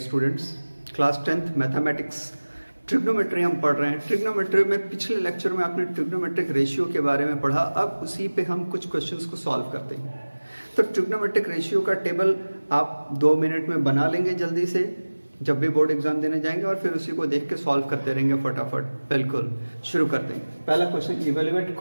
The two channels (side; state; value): both; inverted; correlation -1.00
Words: class 10th mathematics trigonometry हम पढ़ रहे हैं। ट्रिग्नोमेट्री में पिछले लेक्चर में आपने ट्रिग्नोमेट्रिक रेशियो के बारे में पढ़ा, अब उसी पे हम कुछ क्वेश्चंस को सॉल्व करते हैं। तो ट्रिग्नोमेट्रिक रेशियो का टेबल आप 2 मिनट में बना लेंगे जल्दी से, जब भी बोर्ड एग्जाम देने जाएंगे, और फिर उसी को देख के सॉल्व करते रहेंगे फटाफट। बिल्कुल शुरू करते हैं। पहला question, evaluate